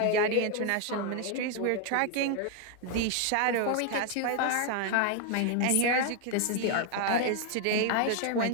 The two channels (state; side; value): different; both; correlation 0.01